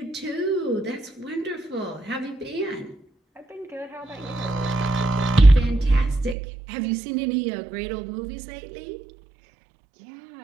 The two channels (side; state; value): left; drops out; at 6.4 s